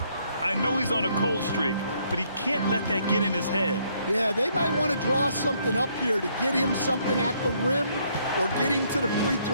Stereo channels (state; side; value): inverted; both; correlation -0.69